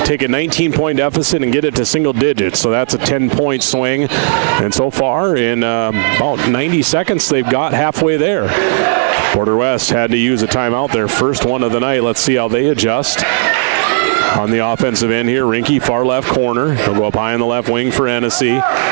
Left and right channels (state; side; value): silent; left; digital silence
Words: take a 19-point deficit and get it to single digits. So that's a 10-point swing. And so far, in about 90 seconds, they've got halfway there. Border West had to use a timeout, their first one of the night. Let's see how they adjust. On the offensive end here, Rinke, far left corner. He'll go up high on the left wing for Hennessy.